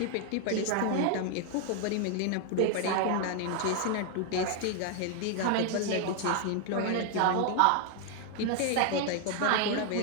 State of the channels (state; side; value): different; both; correlation 0.00